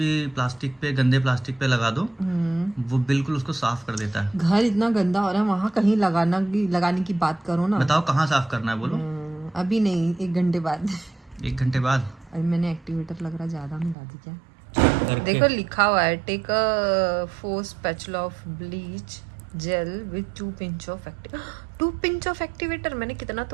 प्लास्टिक पे, गंदे प्लास्टिक पे लगा दो, वो बिल्कुल उसको साफ कर देता है। घर इतना गंदा हो रहा है, वहाँ कहीं लगाने की बात करो ना। बताओ कहाँ साफ करना है बोलो। अभी नहीं, 1 घंटे बाद। 1 घंटे बाद? अभी मैंने एक्टिवेटर लग रहा ज्यादा मिला दी क्या? देखो लिखा हुआ है take a 4 spatula of bleach gel with 2 pinch of 2 pinch of activator. मैंने कितना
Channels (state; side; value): drops out; left; at 14.0 s